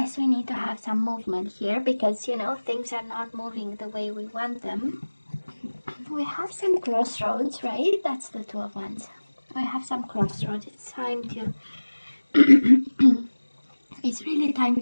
we need to have some movement here, because, you know, things are not moving the way we want them. We have some crossroads, right? That's the 2 of Wands. We have some crossroads. It's time to, it's really time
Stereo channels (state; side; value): inverted; both; correlation -1.00